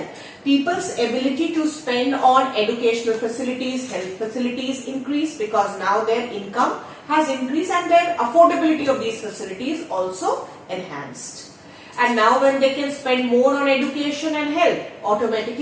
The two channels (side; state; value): both; identical; correlation 1.00